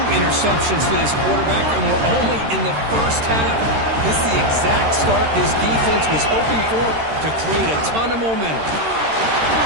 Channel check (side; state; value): left; late; 13 ms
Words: interceptions for this quarterback, and we're only in the first half. This is the exact start this defense was hoping for to create a ton of momentum.